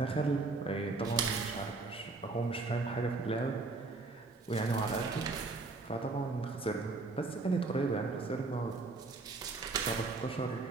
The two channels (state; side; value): quieter; left; 3.6 dB